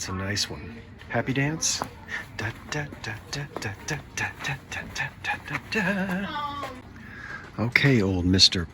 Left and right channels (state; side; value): identical; both; correlation 1.00